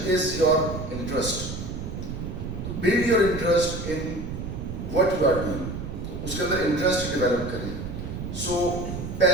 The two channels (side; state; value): right; noise; rumble, 6 dB below the sound